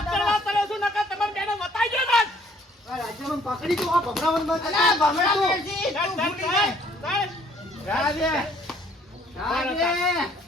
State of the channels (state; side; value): normal; both; correlation 0.61